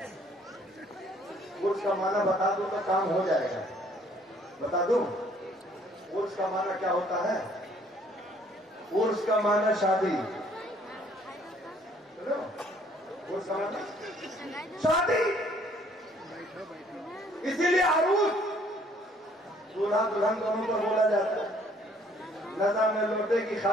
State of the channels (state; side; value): normal; both; correlation 0.61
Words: उर्स का माना बता दो तो काम हो जाएगा। बता दूं उर्स का माना क्या होता है? उर्स का माना शादी। उर्स का माना शादी। इसीलिए अरूस दूल्हा दुल्हन दोनों पर बोला जाता है। नज़ा में लोटे की